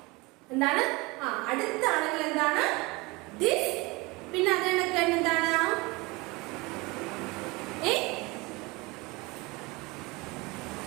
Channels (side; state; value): left; quieter; 24.5 dB